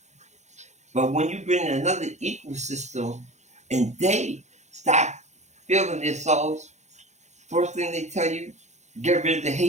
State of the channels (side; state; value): left; late; 0.33 ms